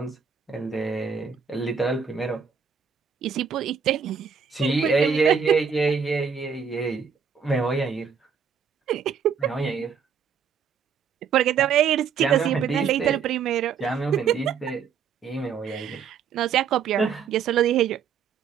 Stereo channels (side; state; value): left; quieter; 6.7 dB